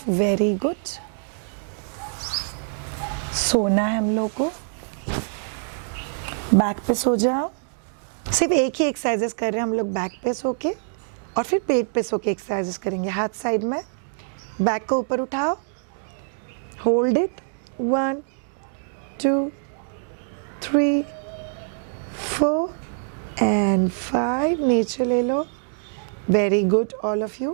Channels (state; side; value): silent; left; digital silence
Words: very good। सोना है हम लोग को, बैक पे सो जाओ। सिर्फ एक ही एक्सरसाइजेस कर रहे हैं हम लोग, बैक पे सो के और फिर पेट पे सो के एक्सरसाइजेस करेंगे। हाथ साइड में, बैक को ऊपर उठाओ, होल्ड इट। 1 2 3 4 and 5, नीचे ले लो। Very good all of